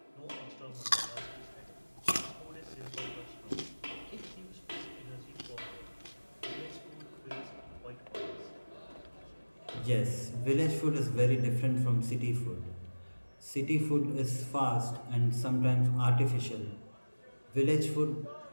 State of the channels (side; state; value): both; inverted; correlation -1.00